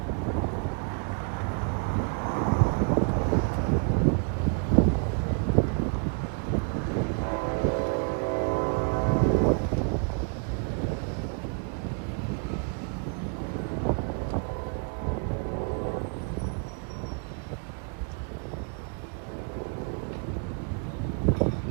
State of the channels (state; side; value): quieter; left; 38.1 dB